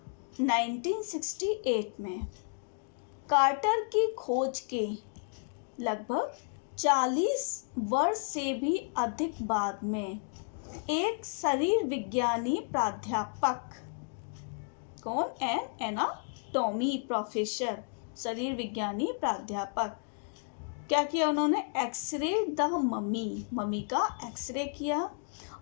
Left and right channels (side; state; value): right; silent; 56 dB below the other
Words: 1968 में quarter की खोज के लगभग 40 वर्ष से भी अधिक बाद में एक शरीर विज्ञानी प्राध्यापक, कौन, एनाटॉमी प्रोफेसर, शरीर विज्ञानी प्राध्यापक, क्या किया उन्होंने, एक्सरे द मम्मी का एक्सरे किया